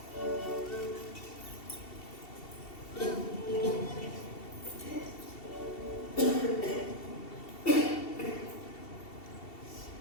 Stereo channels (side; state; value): right; late; 2.7 ms